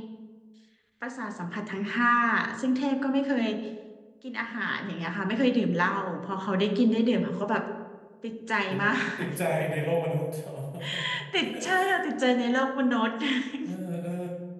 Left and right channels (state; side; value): identical; both; correlation 1.00